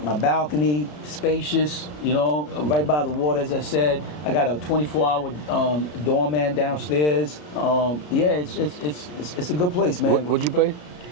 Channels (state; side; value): late; right; 33 ms